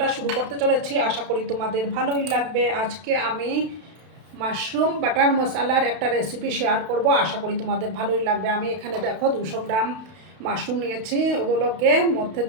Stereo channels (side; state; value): left; late; 32 ms